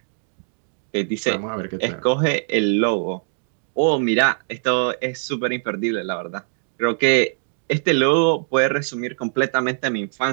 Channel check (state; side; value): silent; left; 64 dB below the other